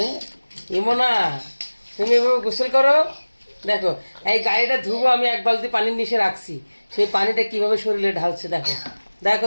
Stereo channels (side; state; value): both; inverted; correlation -1.00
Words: ইমনা তুমি এভাবে গোসল করো। দেখো এই গাড়িটা ধুবো আমি এক বালতি পানির নিচে রাখছি, সেই পানিটা কিভাবে শরীরে ঢালছে দেখো দেখো